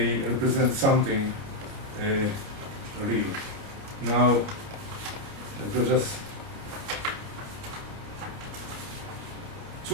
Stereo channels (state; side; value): late; left; 29 ms